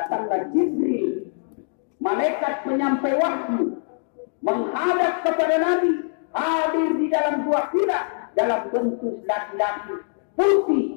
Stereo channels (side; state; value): right; silent; digital silence